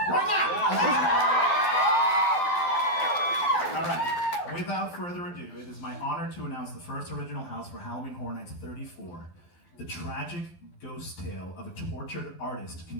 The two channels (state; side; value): late; right; 12 ms